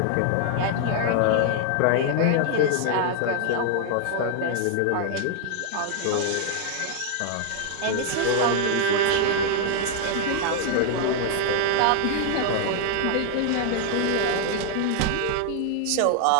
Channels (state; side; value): different; both; correlation 0.00